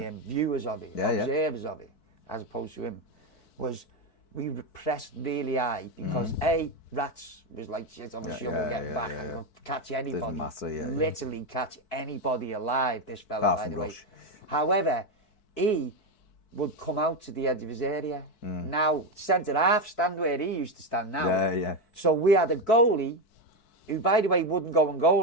viewers of it, observers of it, as opposed to him, was we pressed really high because Rats was like shit on the shovel, get back and could catch anybody, literally catch anybody alive, this fella, by the way. However, he would come out to the edge of his area. Now, centre half stand where he used to stand now. So we had a goalie who, by the way, wouldn't go and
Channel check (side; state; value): right; late; 4.6 ms